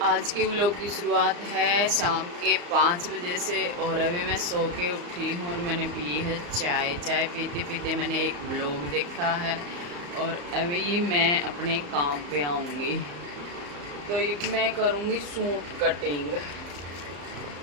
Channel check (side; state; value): left; late; 34 ms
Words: आज के व्लॉग की शुरुआत है शाम के 5 बजे से और अभी मैं सो के उठी हूँ और मैंने पी है चाय। चाय पीते पीते मैंने एक व्लॉग देखा है और अभी मैं अपने काम पे आऊँगी। तो मैं करूँगी सूट कटिंग।